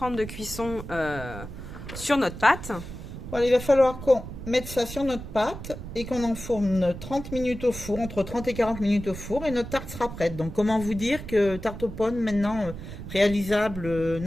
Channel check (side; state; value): right; noise; rumble, 11 dB below the sound